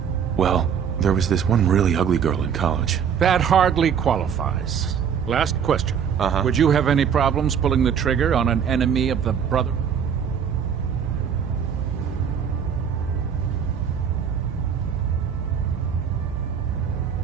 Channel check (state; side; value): quieter; left; 7.6 dB